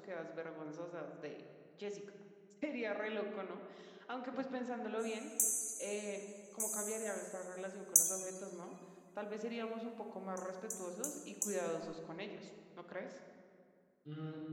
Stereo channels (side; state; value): both; identical; correlation 1.00